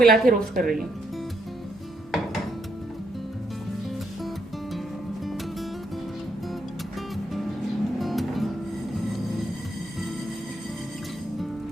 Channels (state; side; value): normal; both; correlation 0.77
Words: के रोस्ट कर रही हूँ।